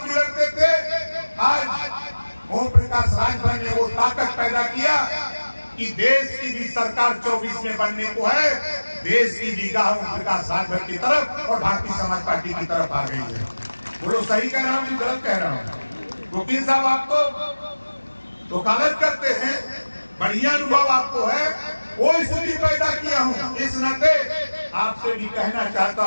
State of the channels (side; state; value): both; inverted; correlation -1.00